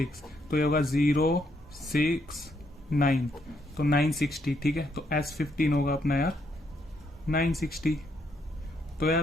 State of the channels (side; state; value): both; normal; correlation 0.75